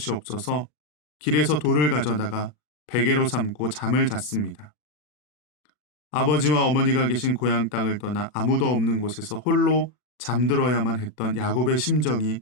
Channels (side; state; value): right; late; 40 ms